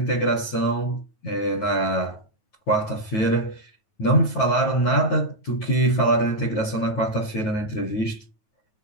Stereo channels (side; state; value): right; late; 9.3 ms